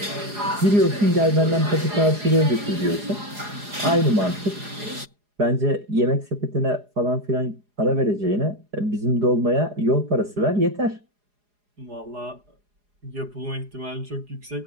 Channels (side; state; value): left; late; 4.8 ms